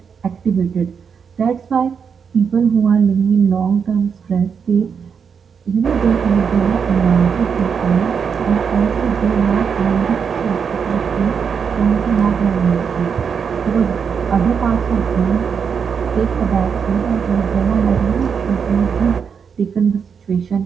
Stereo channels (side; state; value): left; quieter; 6.5 dB